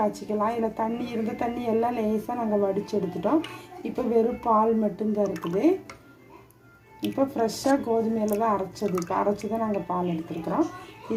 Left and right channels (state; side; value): identical; both; correlation 1.00